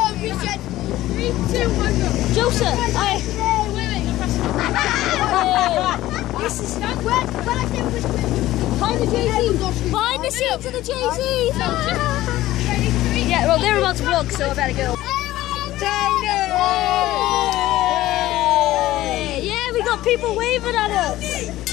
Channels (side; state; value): right; quieter; 15.6 dB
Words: Joseph, this is behind the JT. Behind the scenes of the JT. Yeah, well, they're about to vlog, so I better go. Yeah, we got people waving at us.